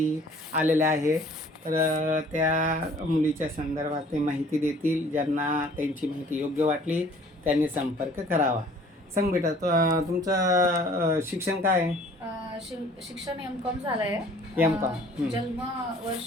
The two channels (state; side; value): normal; both; correlation 0.53